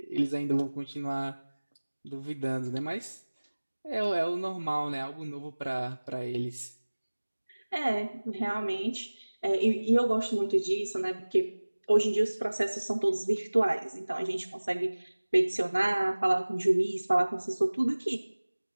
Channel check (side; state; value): both; inverted; correlation -1.00